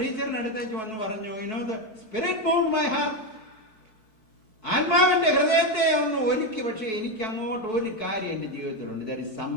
അടുത്തേക്ക് വന്ന് പറഞ്ഞു, the spirit moved my heart. ആത്മാവിന്റെ ഹൃദയത്തെ ഒന്ന് ഒരുക്കി. പക്ഷെ എനിക്ക് അങ്ങോട്ട് ഒരു കാര്യം എൻ്റെ ജീവിതത്തിലുണ്ട്. ദർ ഇസ്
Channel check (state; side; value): late; right; 4.6 ms